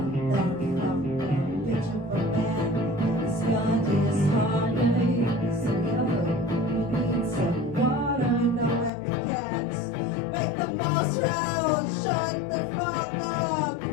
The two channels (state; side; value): drops out; right; at 8.9 s